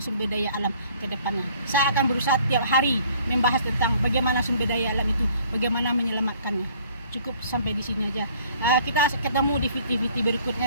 sumber daya alam ke depannya. Saya akan berusaha tiap hari membahas tentang bagaimana sumber daya alam itu, bagaimana menyelamatkannya. Cukup sampai di sini aja. Kita ketemu di video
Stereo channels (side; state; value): both; inverted; correlation -0.57